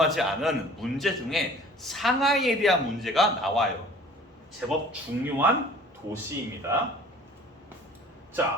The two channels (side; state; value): both; normal; correlation 0.49